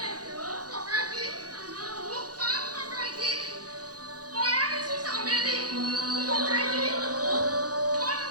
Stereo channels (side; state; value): left; late; 0.68 ms